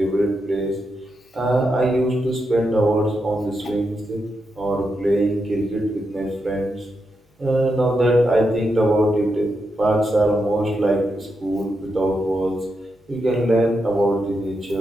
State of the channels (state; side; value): normal; both; correlation 0.85